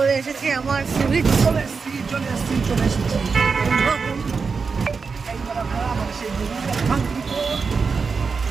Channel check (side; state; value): left; quieter; 5.1 dB